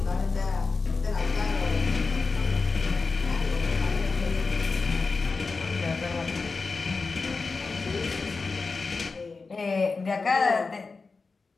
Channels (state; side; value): quieter; right; 4.2 dB